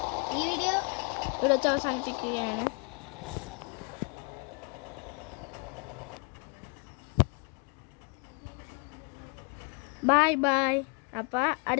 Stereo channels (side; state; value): right; quieter; 34.6 dB